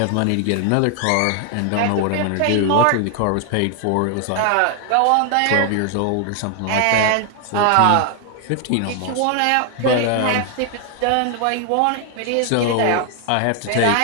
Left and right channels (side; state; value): both; different; correlation 0.00